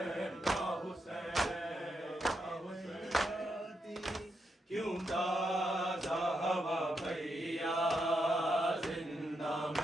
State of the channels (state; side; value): normal; both; correlation 0.83